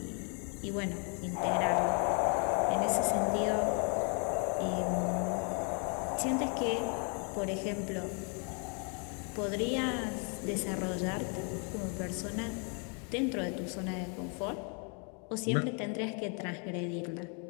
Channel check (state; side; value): quieter; right; 38.7 dB